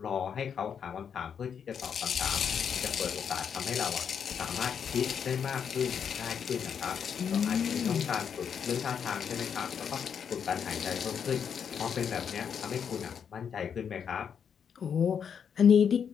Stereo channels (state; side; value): quieter; right; 7.4 dB